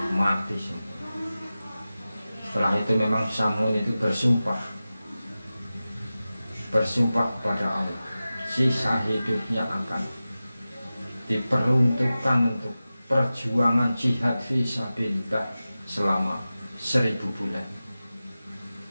mati semua. Setelah itu memang Samun itu bersumpah kepada Allah, sisa hidupnya akan diperuntukkan untuk perjuangan jihad fisabilillah selama 1000 bulan.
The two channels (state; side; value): inverted; both; correlation -0.95